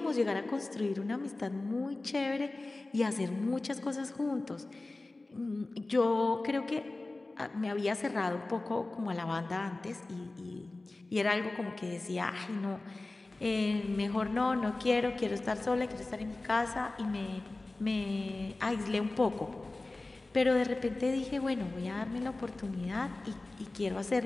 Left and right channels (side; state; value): right; quieter; 3.1 dB